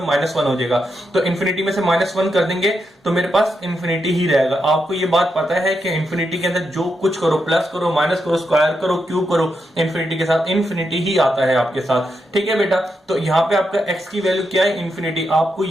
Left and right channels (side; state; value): both; normal; correlation 0.84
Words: -1 हो जाएगा। तो इन्फिनिटी में से -1 कर देंगे तो मेरे पास इन्फिनिटी ही रहेगा। आपको ये बात पता है कि इन्फिनिटी के अंदर जो कुछ करो, प्लस करो, माइनस करो, स्क्वायर करो, क्यूब करो, इन्फिनिटी के साथ इन्फिनिटी ही आता है आपके साथ। ठीक है बेटा, तो यहाँ पे आपका x की वैल्यू क्या है, इन्फिनिटी। आपको